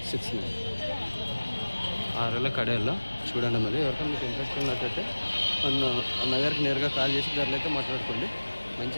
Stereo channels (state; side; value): inverted; both; correlation -1.00